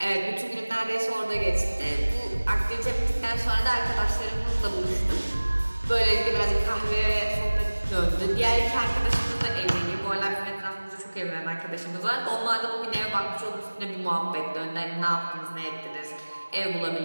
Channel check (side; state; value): both; inverted; correlation -1.00